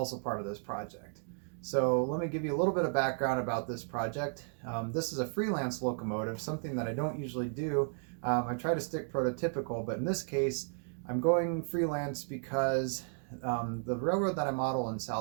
part of this project. So let me give you a little bit of background about this project. This is a freelance locomotive, something that I don't usually do. I try to stick prototypical, but in this case, I'm going freelance because the railroad that I model in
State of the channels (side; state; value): left; silent; 55 dB below the other